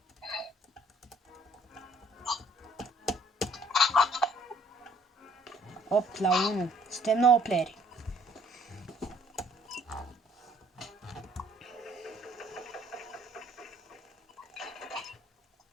Opt la 1. Suntem 9 playeri.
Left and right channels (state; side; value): normal; both; correlation 0.60